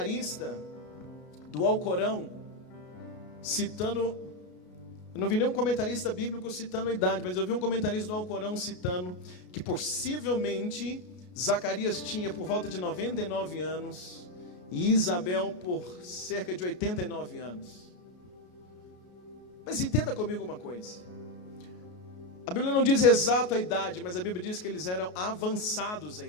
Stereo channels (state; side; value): late; right; 33 ms